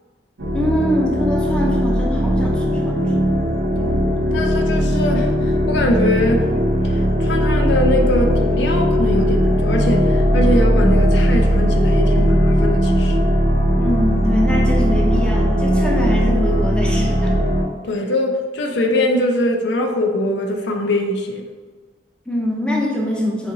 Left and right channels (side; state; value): both; normal; correlation 0.75